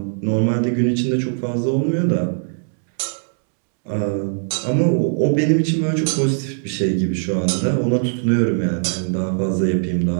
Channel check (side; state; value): left; silent; digital silence